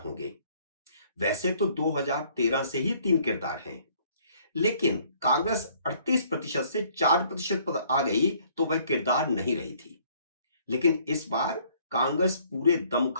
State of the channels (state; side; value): inverted; both; correlation -0.61